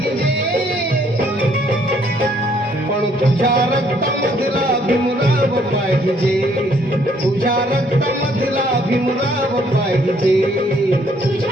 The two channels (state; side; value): normal; both; correlation 0.65